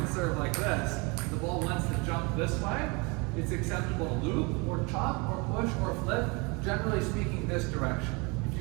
serve like this, the ball wants to jump this way, it's acceptable to loop or chop or push or flip, generally speaking this direction. If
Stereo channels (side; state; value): left; quieter; 28.8 dB